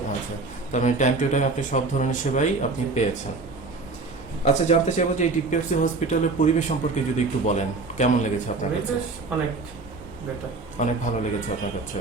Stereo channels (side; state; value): left; quieter; 3.8 dB